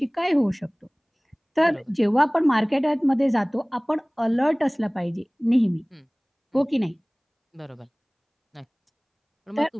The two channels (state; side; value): identical; both; correlation 1.00